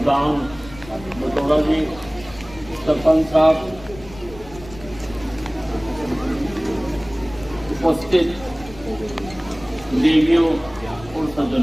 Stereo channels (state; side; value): noise; left; rumble, 18 dB below the sound